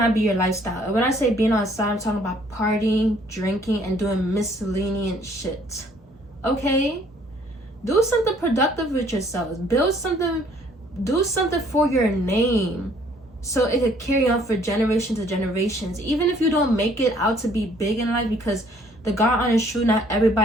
be your lifestyle. And when I say being outside, I'm talking about partying, drinking, and doing miscellaneous shit. Okay? Do something productive with yourselves. Build something, do something for your name, so it could carry on for generations to generations. Even if you don't make it out to be big in life, because the God honest truth, not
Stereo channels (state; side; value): normal; both; correlation 0.61